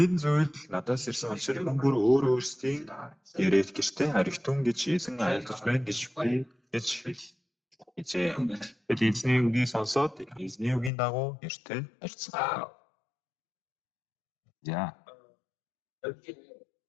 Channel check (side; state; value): right; drops out; at 10.9 s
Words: зүйл надаас ирсэн учраас хүн бүр өөрсдийн яриад гэртээ харигтун гэж эзэн айлтгаж байна гэж би гэж хэлжээ. Бид эзний үгийг сонсоод эзний үгийн дагуу гэртээ харьцсан. За.